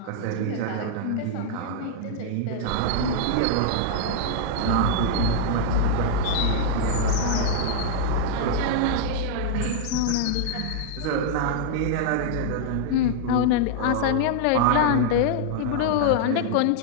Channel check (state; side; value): different; both; correlation -0.01